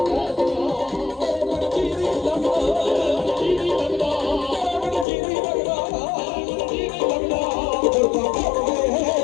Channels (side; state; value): right; drops out; at 5.1 s